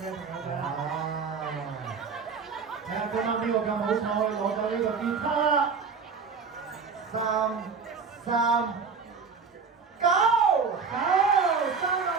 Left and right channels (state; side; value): quieter; left; 5.5 dB